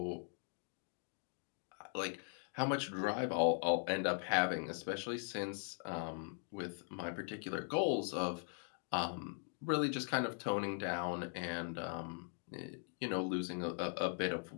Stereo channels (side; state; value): right; silent; 51 dB below the other